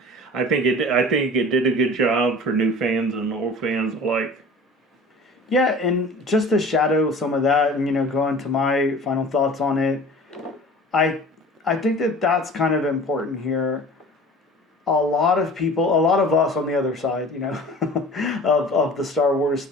I think it did a good job for new fans and old fans alike. Yeah, and just to shadow some of that and go into my final thoughts on it, I think that that's kind of important here. A lot of us on the other side, of the Star Wars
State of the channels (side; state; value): both; normal; correlation 0.42